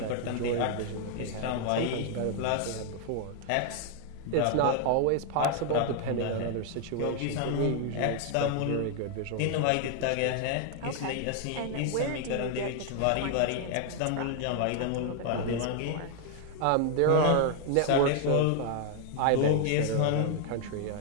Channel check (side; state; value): both; different; correlation 0.00